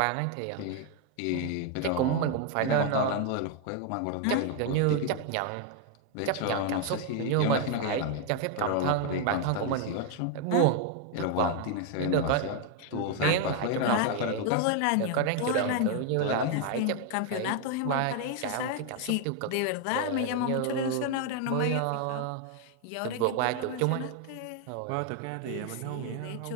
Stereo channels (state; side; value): different; both; correlation 0.01